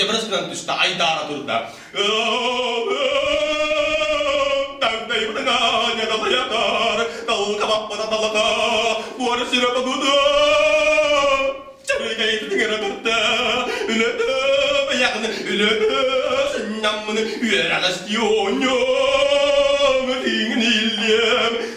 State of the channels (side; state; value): both; identical; correlation 1.00